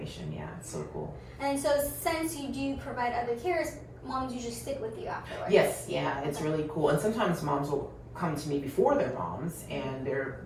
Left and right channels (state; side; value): identical; both; correlation 1.00